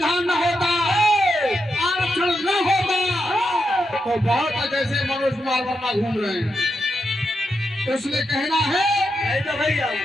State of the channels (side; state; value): both; normal; correlation 0.85